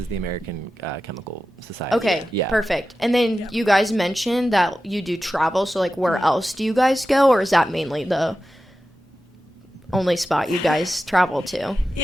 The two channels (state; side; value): normal; both; correlation 0.93